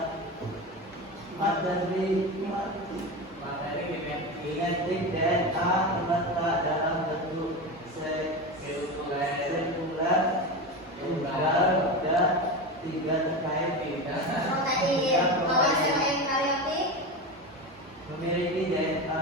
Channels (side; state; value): both; normal; correlation 0.22